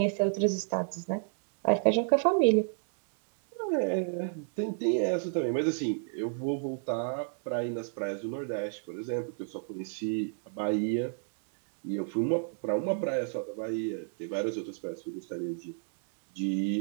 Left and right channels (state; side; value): silent; left; digital silence